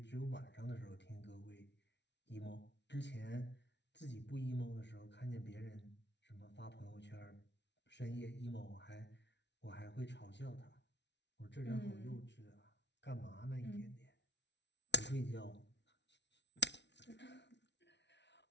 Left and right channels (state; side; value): late; right; 0.51 ms